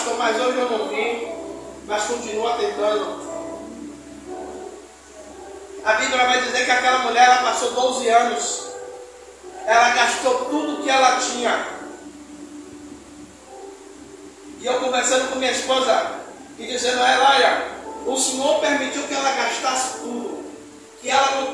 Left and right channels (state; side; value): identical; both; correlation 1.00